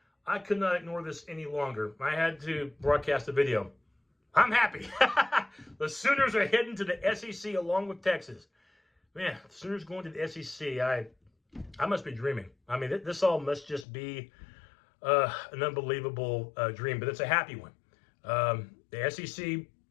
I could not ignore this any longer. I had to broadcast a video. I'm happy. The Sooners are heading to the SEC along with Texas. Man, the Sooners going to the SEC. I must be dreaming. I mean, this all must just be an unbelievable dream, but it's a happy one. The SEC,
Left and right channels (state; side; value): drops out; right; at 13.9 s